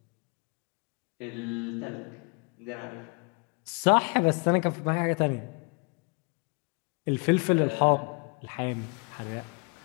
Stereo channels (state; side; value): quieter; right; 35.1 dB